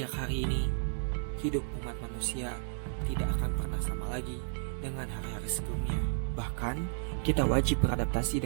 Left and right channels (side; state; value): left; silent; 55 dB below the other